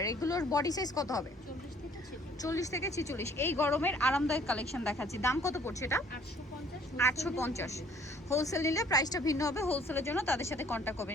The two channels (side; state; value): both; normal; correlation 0.58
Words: এগুলোর বডি সাইজ কত হবে? 40 থেকে 46। এই গরমের আরামদায়ক কালেকশন দেখাচ্ছি। দাম কত পড়ছে এটা? 850। হোলসেল নিলে প্রাইসটা ভিন্ন হবে। হোলসেলের জন্য তাদের সাথে কন্ট্যাক্ট